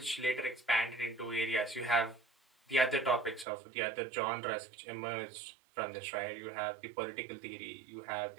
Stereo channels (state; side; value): drops out; left; at 3.5 s